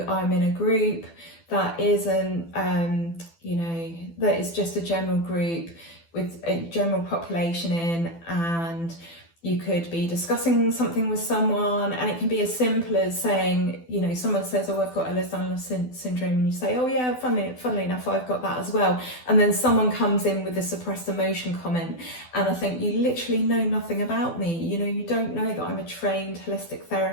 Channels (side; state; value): right; late; 12 ms